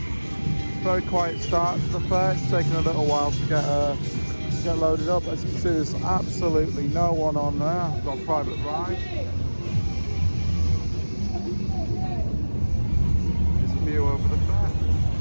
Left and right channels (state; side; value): inverted; both; correlation -1.00